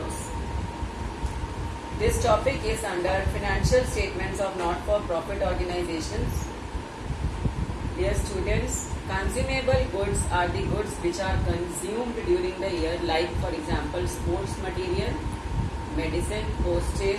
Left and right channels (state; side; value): identical; both; correlation 1.00